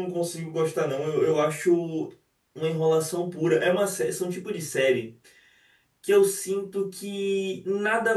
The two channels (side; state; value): both; identical; correlation 1.00